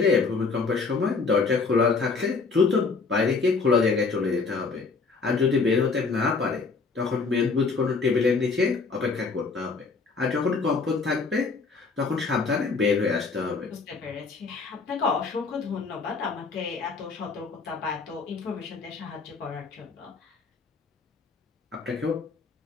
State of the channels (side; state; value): right; quieter; 4.5 dB